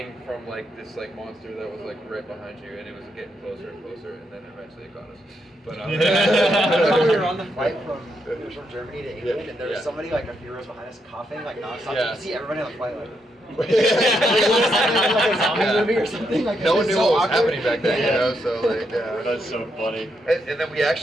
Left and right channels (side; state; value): both; normal; correlation 0.80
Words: from like this like monster that was like right behind you, and it was getting closer and closer, and then eventually it got us. But we were on the flight from Germany to England, and there was somebody like a few rows behind us coughing like nonstop. You could see everybody on the flight like. Like a zombie movie or something. Like no one knew what was happening back then, you know. So like, that's so funny. And then we